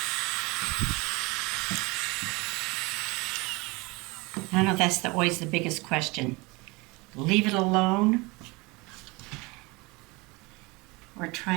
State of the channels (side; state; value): left; quieter; 25.3 dB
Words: I know that's always the biggest question. Leave it alone, or